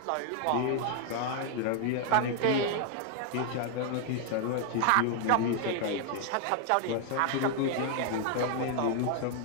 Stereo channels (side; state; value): both; different; correlation 0.00